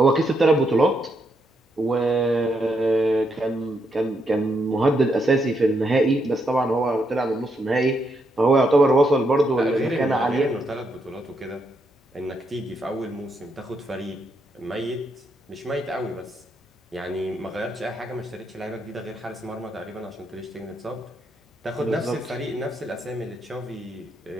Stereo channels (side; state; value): both; normal; correlation 0.79